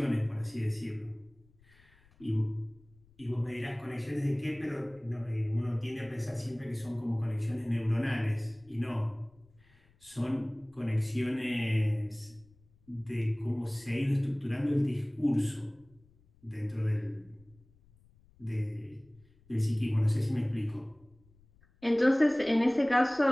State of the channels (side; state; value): left; noise; rumble, 29 dB below the sound